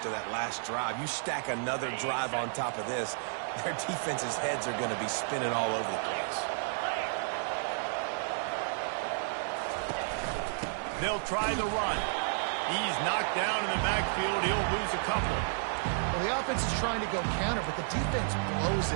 that last drive. You stack another drive on top of this, their defense's heads are going to be spinning all over the place. They'll try the run. He's knocked down in the backfield. He'll lose a couple. Well, the offense is trying to go counter, but the defense blows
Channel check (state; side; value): silent; left; digital silence